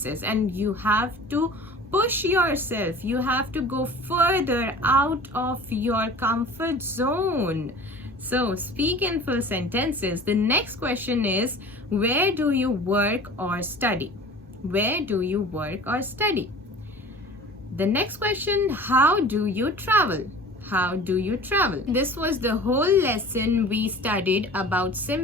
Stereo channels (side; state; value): both; normal; correlation 0.41